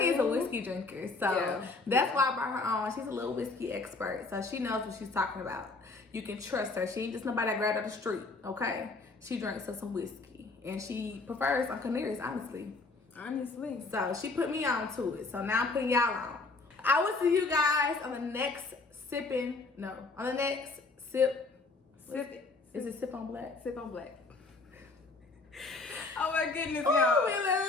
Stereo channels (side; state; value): right; quieter; 3.7 dB